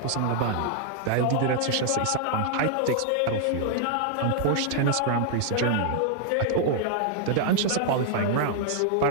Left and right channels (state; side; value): different; both; correlation 0.00